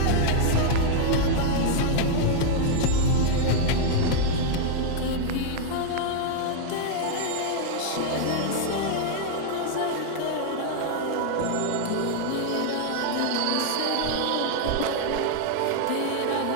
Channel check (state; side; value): different; both; correlation 0.00